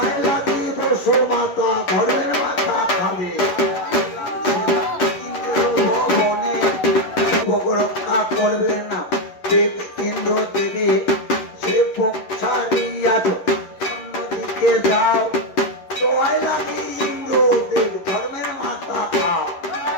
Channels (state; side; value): late; right; 11 ms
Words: লাগি বসু মাতা ঘরের মাথা খাবে। সেবক রক্ষা করবে না দেব ইন্দ্র দেবী, সেবক ছাড়িয়া অন্যদিকে যাও, দোয়াই লাগি ইন্দ্র দেব ধর্মের মাথা খাও।